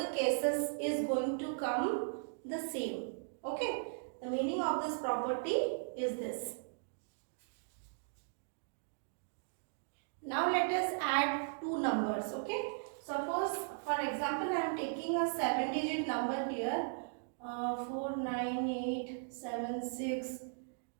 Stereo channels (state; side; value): silent; left; digital silence